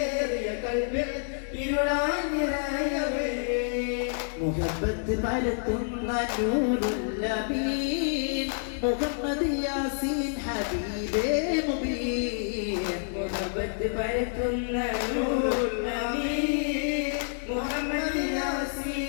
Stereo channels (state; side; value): silent; right; digital silence